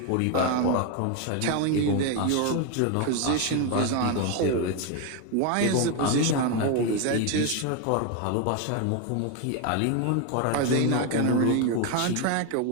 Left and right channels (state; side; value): different; both; correlation 0.02